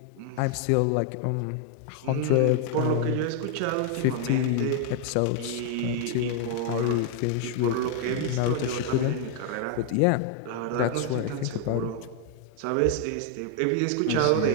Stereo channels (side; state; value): both; different; correlation 0.00